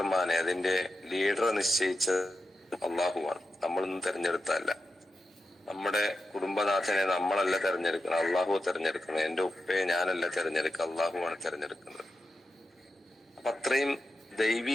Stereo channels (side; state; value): both; normal; correlation 0.89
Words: അതിന്റെ ലീഡറെ നിശ്ചയിച്ചത് അള്ളാഹുവാണ്. നമ്മളൊന്നും തെരഞ്ഞെടുത്തല്ല. നമ്മുടെ കുടുംബനാഥനെ നമ്മളല്ല തെരഞ്ഞെടുക്കണം, അള്ളാഹു തെരഞ്ഞെടുക്കണം. എന്റെ ഉപ്പയെ ഞാനല്ല തെരഞ്ഞെടുക്കുക, അള്ളാഹുവാണ് തെരഞ്ഞെടുക്കുന്നത്. അപ്പൊ അത്രയും